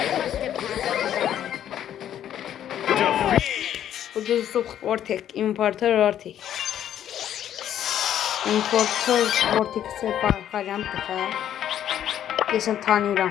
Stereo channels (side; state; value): right; quieter; 10.6 dB